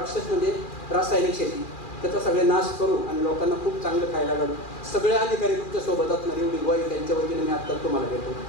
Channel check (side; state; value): right; late; 2.4 ms